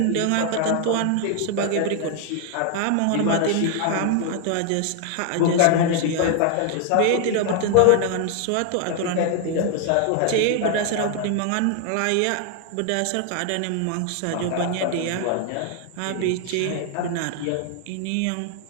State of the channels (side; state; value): both; different; correlation 0.00